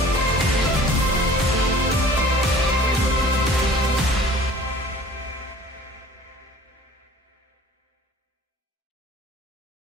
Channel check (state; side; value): normal; both; correlation 0.48